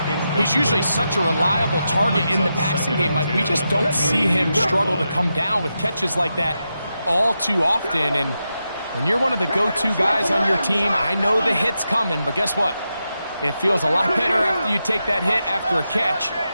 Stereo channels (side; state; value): both; inverted; correlation -0.87